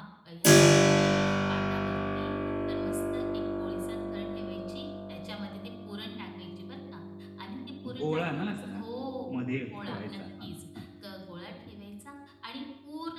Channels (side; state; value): both; identical; correlation 1.00